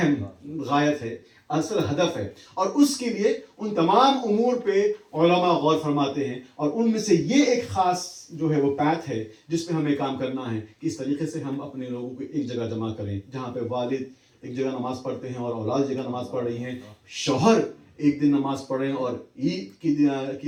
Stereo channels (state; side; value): identical; both; correlation 1.00